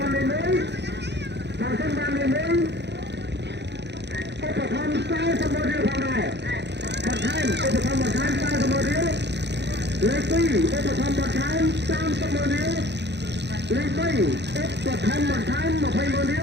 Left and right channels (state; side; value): late; left; 0.50 ms